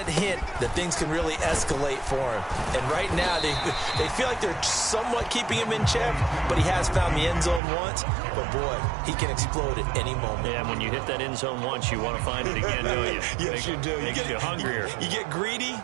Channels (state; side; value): drops out; left; at 7.6 s